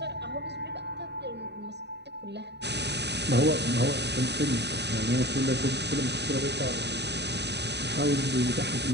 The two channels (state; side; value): late; left; 0.50 ms